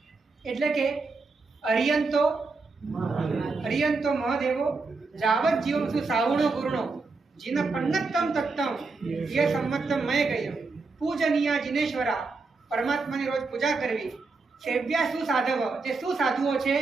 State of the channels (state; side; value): quieter; left; 4.0 dB